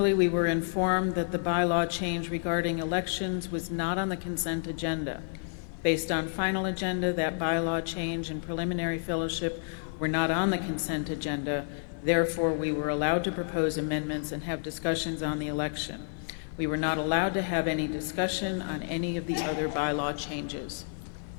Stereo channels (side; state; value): right; silent; 58 dB below the other